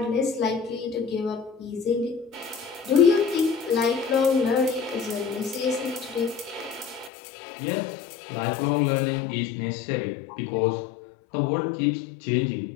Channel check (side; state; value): right; drops out; at 7.1 s